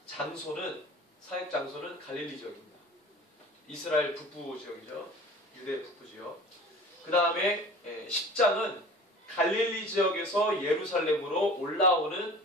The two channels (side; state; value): both; normal; correlation 0.41